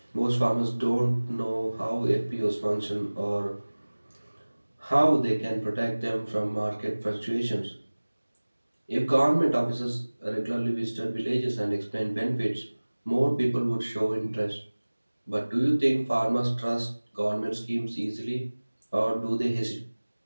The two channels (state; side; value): inverted; both; correlation -1.00